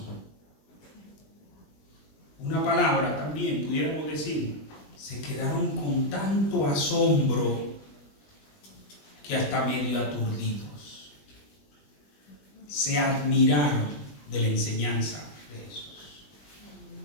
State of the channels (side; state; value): right; late; 20 ms